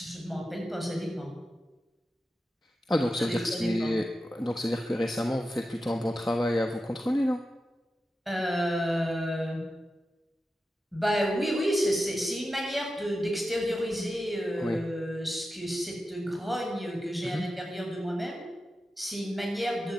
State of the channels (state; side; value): normal; both; correlation 0.92